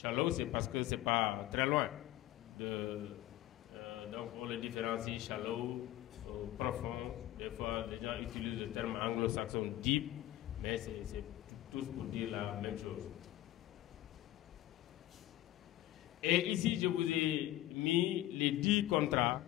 c'est parce que c'est pas très loin. Donc on le différencie shallow, profond. Des fois, les gens utilisent le terme anglo-saxon deep, mais c'est tous pour dire la même chose. Et ici, je vous ai mis les 10 contrats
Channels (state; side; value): quieter; right; 14.8 dB